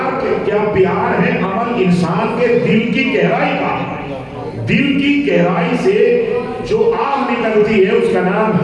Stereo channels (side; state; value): both; identical; correlation 1.00